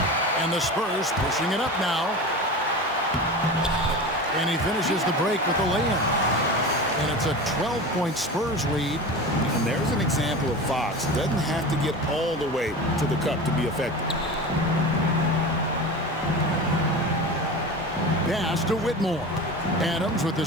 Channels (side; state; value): both; normal; correlation 0.30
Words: And the Spurs pushing it up now. And he finishes the break with a lay-in. And it's a 12-point Spurs lead. And there's an example of Fox. Doesn't have to get all the way to the cup to be effective. Pass to Whitmore. Adams with the